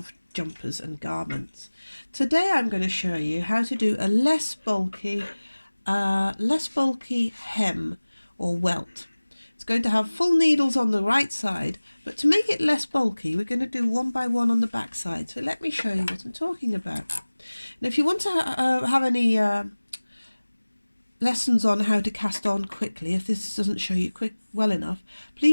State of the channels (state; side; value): inverted; both; correlation -1.00